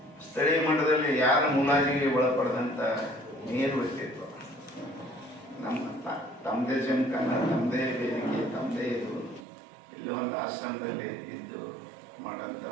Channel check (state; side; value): drops out; left; at 9.5 s